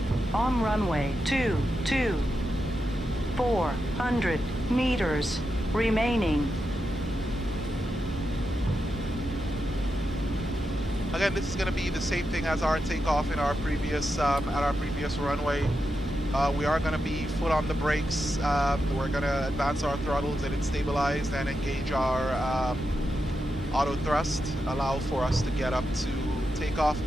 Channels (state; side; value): normal; both; correlation 0.87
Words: On runway 22. 400 meters remaining. Again, this is going to be the same thing as our takeoff in our previous at our previous runway. We are going to be foot on the brakes. We're going to advance our throttles, get it stabilized, and engage our auto thrust, allow for us to get up to takeoff